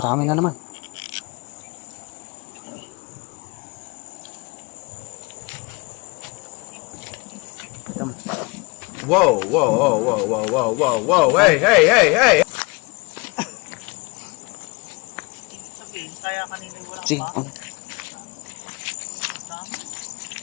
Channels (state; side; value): quieter; right; 28.1 dB